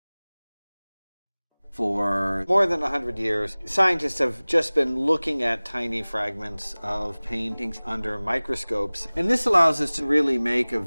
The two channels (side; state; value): both; inverted; correlation -1.00